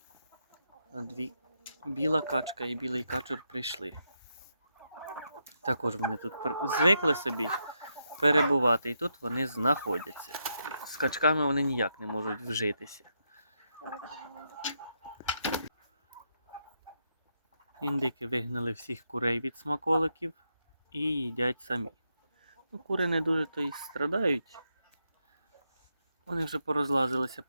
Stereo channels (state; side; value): inverted; both; correlation -0.82